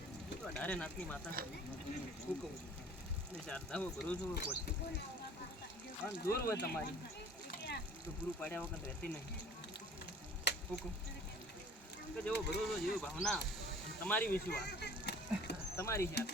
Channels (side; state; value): both; normal; correlation 0.50